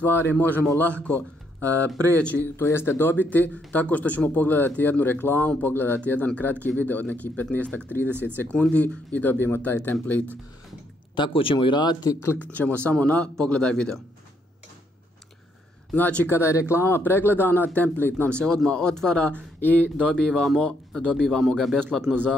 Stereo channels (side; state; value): both; normal; correlation 0.73